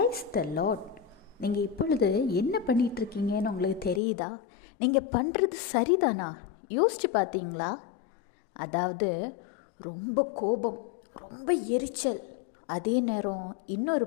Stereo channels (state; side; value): drops out; right; at 4.0 s